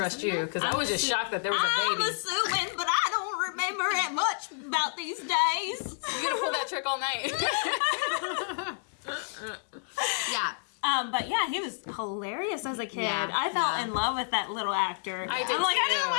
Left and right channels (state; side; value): silent; right; digital silence